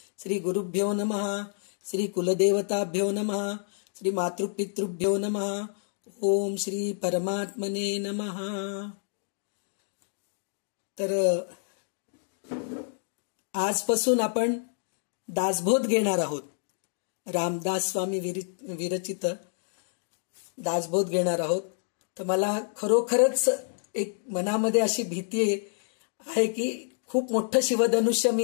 श्री गुरुभ्यो नमः, श्री कुलदेवताभ्यो नमः, श्री मातृपितृभ्यो नमः. ओम श्री परमात्मने नमः. तर आजपासून आपण दासबोध घेणार आहोत. रामदास स्वामी विरचित दासबोध घेणार आहोत. तर मला खरोखरच एक मनामध्ये अशी भीती आहे की खूप मोठं शिवधनुष्य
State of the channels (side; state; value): right; silent; digital silence